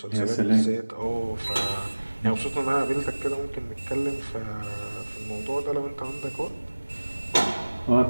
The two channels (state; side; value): inverted; both; correlation -1.00